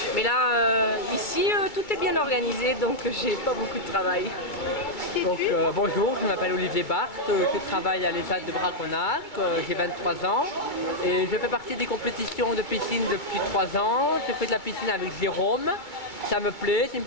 mais là ici tout est bien organisé donc j'ai pas beaucoup de travail. Donc, bonjour, je m'appelle Olivier Barthes, je travaille à l'ESAT de Braconnac, j'ai 23 ans et je fais partie des compétitions de piscine depuis 3 ans. Je fais de la piscine avec Jérôme, ça me plaît, c'est une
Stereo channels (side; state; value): right; late; 2.3 ms